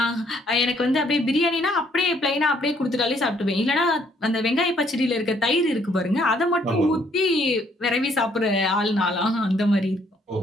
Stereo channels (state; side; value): normal; both; correlation 0.66